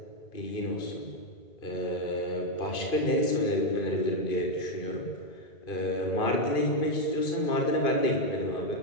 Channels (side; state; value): right; late; 2.5 ms